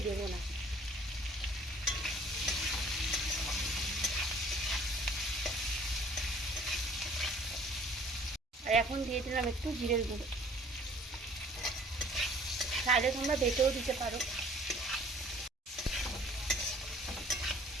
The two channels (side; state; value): both; normal; correlation 0.54